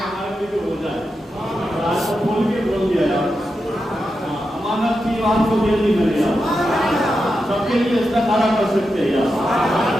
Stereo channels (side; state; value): both; normal; correlation 0.88